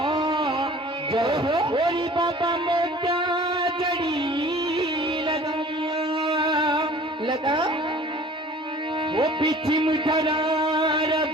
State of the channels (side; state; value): both; normal; correlation 0.47